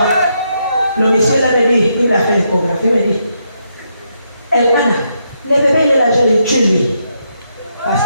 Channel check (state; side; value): inverted; both; correlation -0.79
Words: Le monsieur l'avait dit, il m'a fait l'échographie, il m'a dit, Elmana, le bébé il est là, je l'ai tué lui. Parce